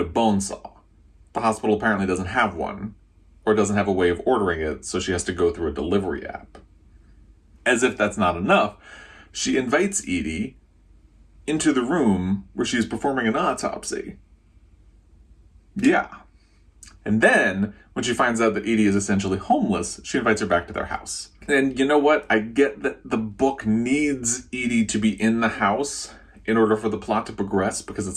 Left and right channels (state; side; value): identical; both; correlation 1.00